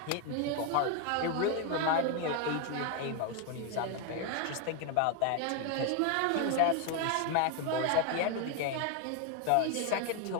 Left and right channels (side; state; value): both; different; correlation 0.01